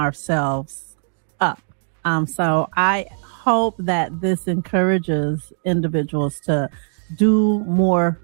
up. So I hope that this encourages individuals to do more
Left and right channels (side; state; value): left; silent; digital silence